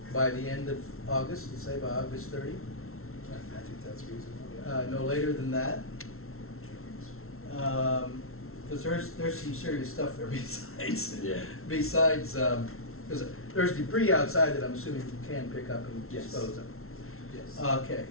by the end of August, let's say by August 30. I think that's reasonable, No later than that. Because there's some serious stuff there besides, Yeah. besides, because there's debris outside that I'm assuming you can pick up and Yes. dispose of. Yes. Okay,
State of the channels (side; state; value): right; late; 0.62 ms